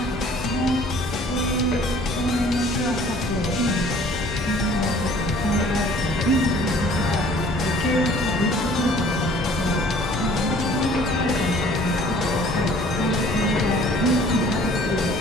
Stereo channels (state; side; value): normal; both; correlation 0.53